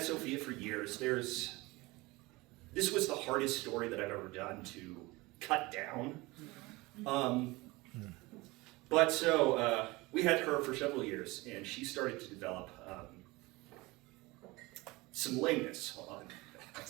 Sophia for years. There's this was the hardest story that I've ever done to cut down. But so we had her for several years, and she started to develop some lameness on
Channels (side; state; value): left; quieter; 22.3 dB